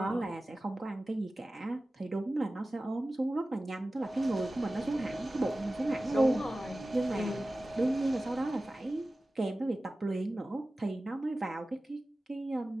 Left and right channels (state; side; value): normal; both; correlation 0.96